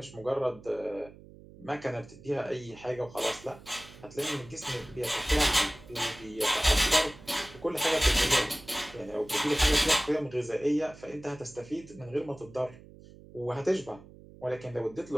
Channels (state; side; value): noise; right; hum, 20 dB below the sound